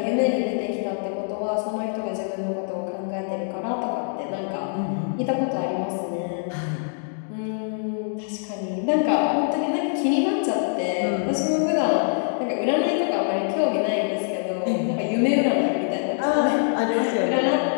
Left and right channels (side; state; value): right; silent; 62 dB below the other